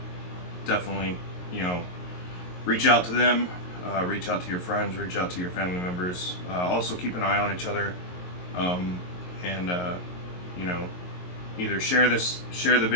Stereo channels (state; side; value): late; right; 22 ms